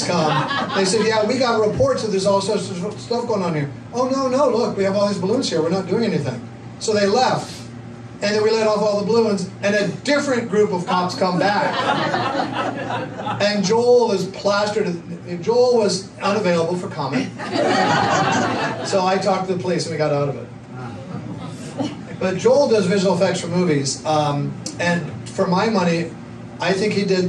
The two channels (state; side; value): identical; both; correlation 1.00